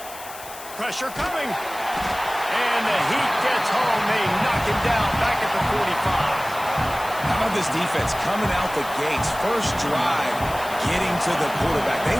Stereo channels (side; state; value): left; noise; hiss, 15 dB below the sound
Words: Pressure coming. And the Heat gets home. They knock him down back at the 45. How about this defense coming out the gates? First drive, getting to the quarterback. They